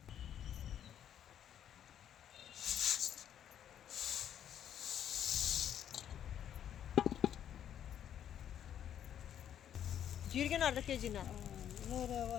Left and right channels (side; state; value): right; quieter; 9.9 dB